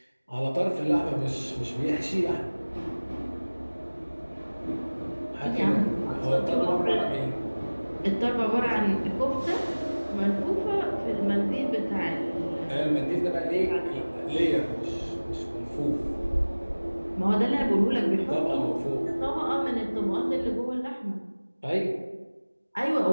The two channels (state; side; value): inverted; both; correlation -1.00